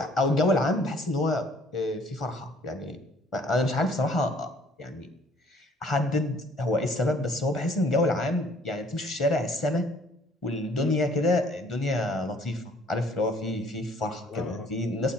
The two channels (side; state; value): both; normal; correlation 0.58